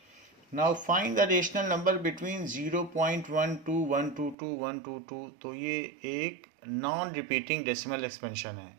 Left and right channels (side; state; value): left; drops out; at 4.4 s